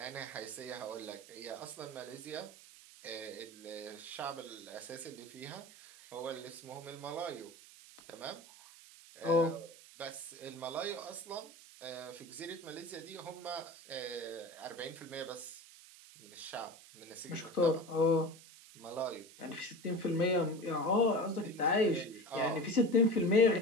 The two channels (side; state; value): right; noise; hiss, 19 dB below the sound